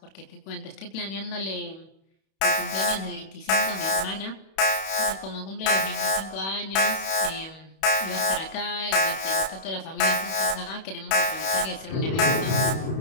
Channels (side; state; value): right; late; 31 ms